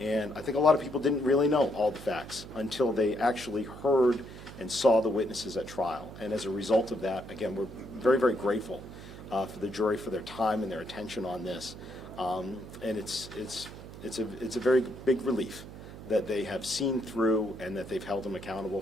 I think a lot of people didn't really know all the facts until they actually heard and saw the witnesses at trial. And as a result of that, again, we're very, very grateful for the jury for their time and their attention on this. And it's a very big relief that they have seen through and that they've held him accountable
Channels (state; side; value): noise; right; hum, 14 dB below the sound